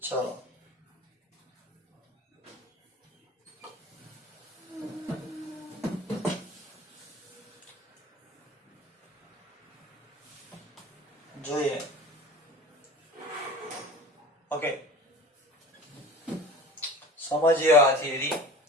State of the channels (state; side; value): normal; both; correlation 0.39